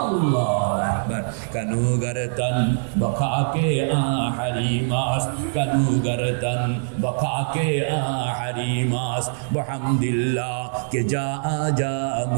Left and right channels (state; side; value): silent; left; 63 dB below the other